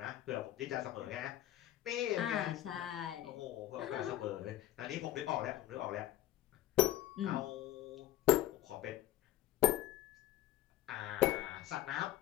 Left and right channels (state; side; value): quieter; right; 14.3 dB